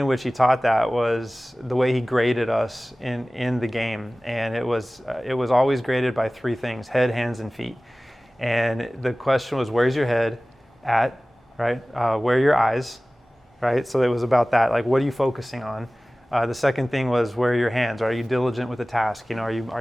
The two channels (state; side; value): normal; both; correlation 0.98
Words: which he taught that was the way he graded us in the game, and it was always graded by three things: head, hands, and feet. And the question was, where's your head at, right? Where are your eyes, right? So it was about that, like what are you focusing on? The second thing was, where are your hands? Are you diligent with the task? Are